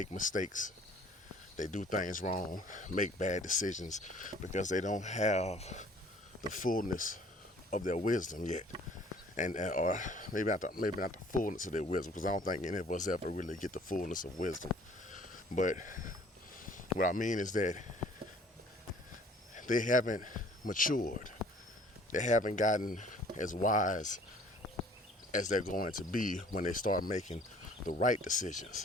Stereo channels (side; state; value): both; normal; correlation 0.54